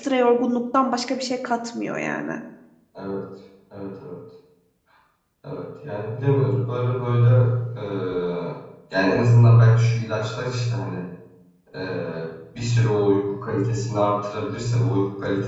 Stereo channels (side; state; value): both; identical; correlation 1.00